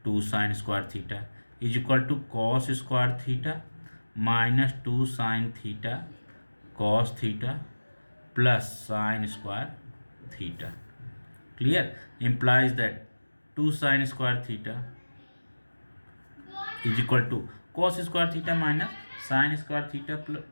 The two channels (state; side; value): inverted; both; correlation -1.00